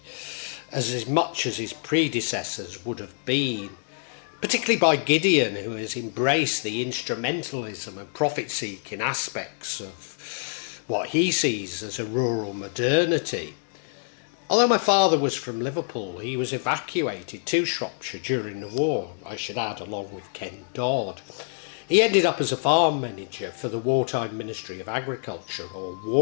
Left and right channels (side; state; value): right; silent; digital silence